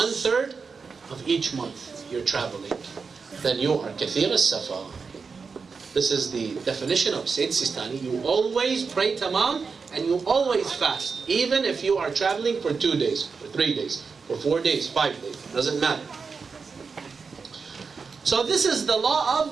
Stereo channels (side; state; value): left; quieter; 5.1 dB